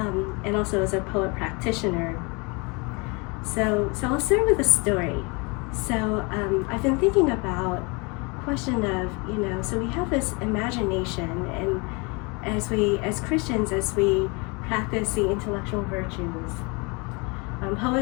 also as a poet practitioner. So I'll start with a story. So I've been thinking about the question of, so we have this imagination, and as Christians, as we practice the intellectual virtues,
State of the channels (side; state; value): right; quieter; 29.8 dB